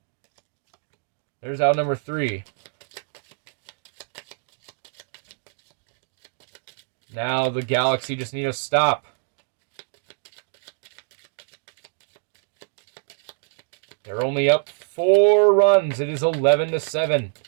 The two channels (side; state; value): left; silent; digital silence